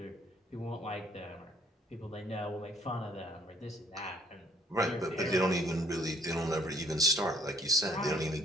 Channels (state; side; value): normal; both; correlation 0.62